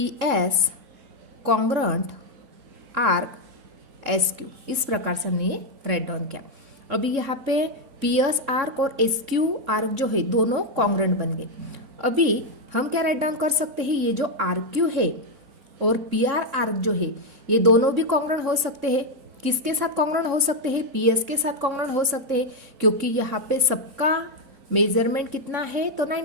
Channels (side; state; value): left; late; 3.6 ms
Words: S congruent arc S Q, इस प्रकार से हमने ये राइट डाउन किया। अभी यहाँ पे पी एस आर्क और एस क्यू आर्क जो है दोनों कॉन्ग्रुएंट बन गए। अभी हम क्या राइट डाउन कर सकते हैं, ये जो आर्क क्यू है और पी आर आर्क जो है ये दोनों भी कॉन्ग्रुएंट हो सकते हैं। किसके साथ कॉन्ग्रुएंट हो सकते हैं, पी एस के साथ कॉन्ग्रुएंट हो सकते हैं, क्योंकि यहाँ पे सबका मेजरमेंट कितना है तो